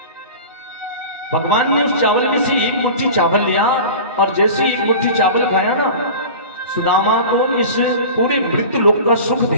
भगवान ने उस चावल में से एक मुट्ठी चावल लिया, और जैसे एक मुट्ठी चावल खाया ना, सुदामा को इस पूरे मृत्यु लोक का सुख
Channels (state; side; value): inverted; both; correlation -0.36